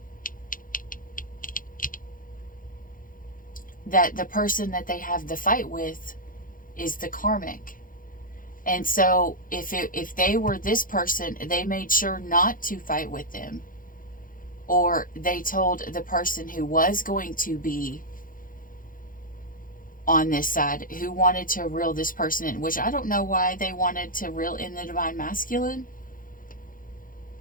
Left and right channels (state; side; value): late; right; 0.40 ms